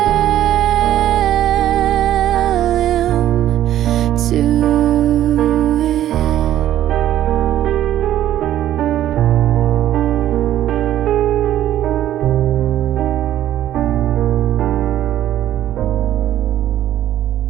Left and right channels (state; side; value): quieter; left; 12.2 dB